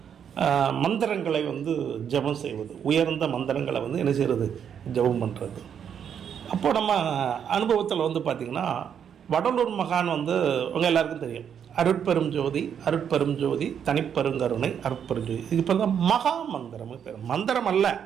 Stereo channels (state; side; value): quieter; left; 8.2 dB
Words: மந்திரங்களை ஜபம் செய்வது, உயர்ந்த மந்திரங்களை என்ன செய்கிறது, ஜபம் பண்ணுறது. அப்போ நம்ம அனுபவத்தில் பார்த்திங்கன்னா வடலூர் மகான் உங்கள் எல்லாருக்கும் தெரியும், அருட்பெரும் ஜோதி, அருட்பெரும் ஜோதி, தனிப்பெருங்கருணை, அருட்பெரும் ஜோதி. இது இப்போ தான் மகா மந்திரம் பேர். மந்திரம் அல்ல,